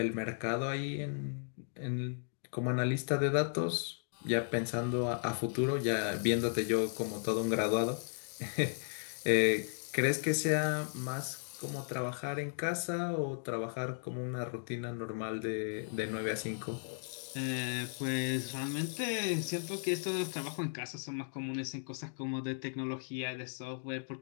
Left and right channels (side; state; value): right; silent; digital silence